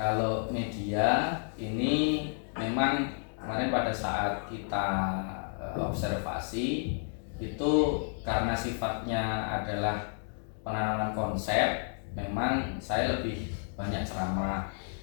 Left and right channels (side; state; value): right; silent; 57 dB below the other